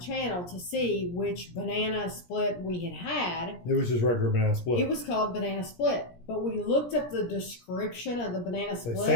to see which banana split we had. It was just regular banana split. It was called banana split. But we looked up the description of the banana split. They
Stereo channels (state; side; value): late; right; 17 ms